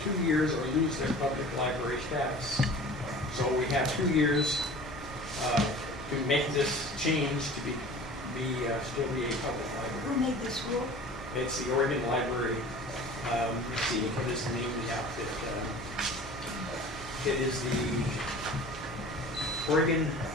2 years or lose their public library status. So we have 2 years to to make this change to still be a public Who library. made this rule? It's the Oregon Library, let's see, what is the name of the outfit? It is the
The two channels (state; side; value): normal; both; correlation 0.41